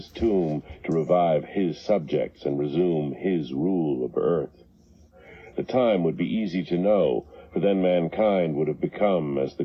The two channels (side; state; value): both; identical; correlation 1.00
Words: tomb to revive his subjects and resume his rule of earth. The time would be easy to know, for then mankind would have become as the